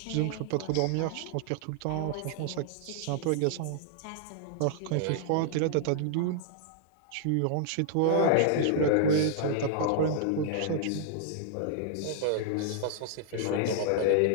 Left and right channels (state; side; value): different; both; correlation -0.01